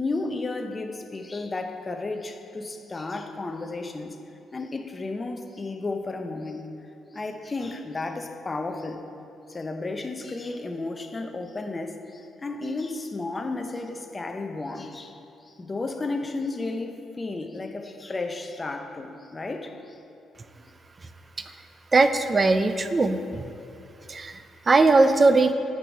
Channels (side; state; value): both; normal; correlation 0.89